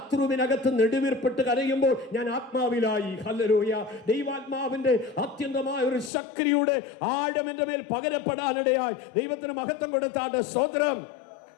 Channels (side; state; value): right; drops out; at 6.1 s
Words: നെടുവീർപ്പെട്ട് കരയുമ്പോൾ ഞാൻ ആത്മാവിലായി. ഹല്ലേലൂയ. ദൈവാത്മാവിന്റെ അത്യന്തമായ ഒരു ശക്തിയുടെ ആഴം എൻ്റെ മേൽ പകരപ്പെടാനിടയായി. ദൈവത്തിന് മഹത്വം കൊടുത്താട്ട് സ്തോത്രം.